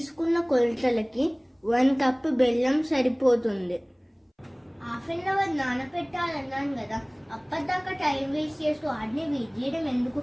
కొలతలకి 1 కప్పు బెల్లం సరిపోతుంది. హాఫ్ అన్ అవర్ నానపెట్టాలన్నాను కదా, అప్పటిదాకా టైం వేస్ట్ చేస్తూ వాటిని వెయిట్ చేయడం ఎందుకు?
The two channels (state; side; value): identical; both; correlation 1.00